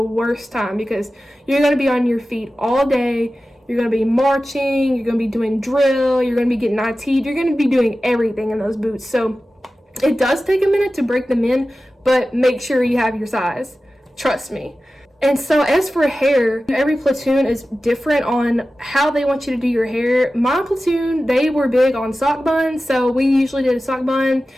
worst time, because you're going to be on your feet all day. You're going to be marching, you're going to be doing drill, you're going to be getting IT'd, you're going to be doing everything in those boots. So it does take a minute to break them in, but make sure you have your size. Trust me. And so as for hair, every platoon is different on how they want you to do your hair. My platoon, they were big on sock buns, so we usually did a sock bun.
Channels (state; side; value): normal; both; correlation 0.95